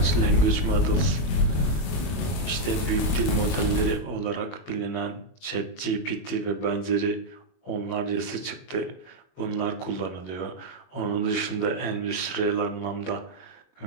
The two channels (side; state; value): right; late; 22 ms